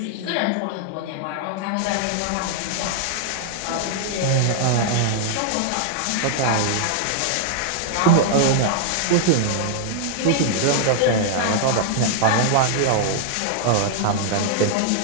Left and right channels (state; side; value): different; both; correlation -0.01